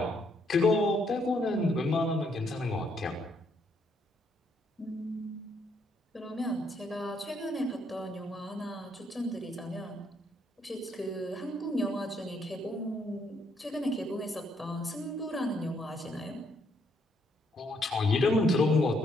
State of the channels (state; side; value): normal; both; correlation 0.72